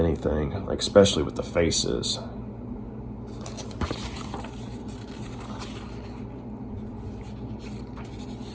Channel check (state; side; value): identical; both; correlation 1.00